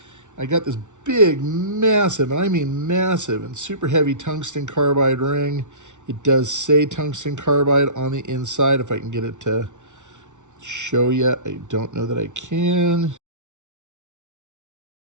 I got this big, massive, and I mean massive, and super heavy tungsten carbide ring. It does say tungsten carbide on the inside. If I can get it to show you, I don't know that I can.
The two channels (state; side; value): late; left; 0.85 ms